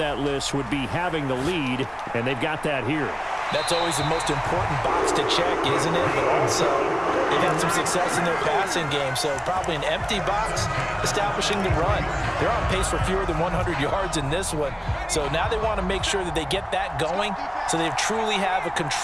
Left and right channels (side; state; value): both; identical; correlation 1.00